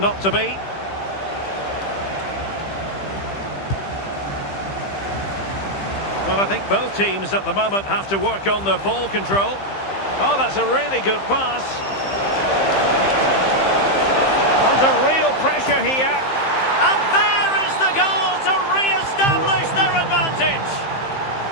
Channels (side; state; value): right; late; 15 ms